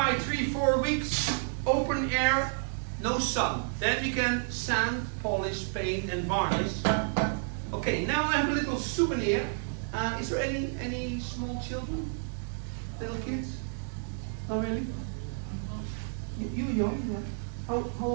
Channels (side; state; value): left; silent; digital silence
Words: 3-4 weeks, open air, no sun. Then we can sand, polish, paint and varnish. Okay, now I have a little souvenir. Is there any small children? Little kids? Oh really? You young? Yeah. How